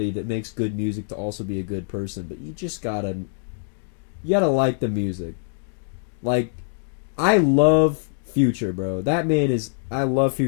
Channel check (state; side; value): silent; right; digital silence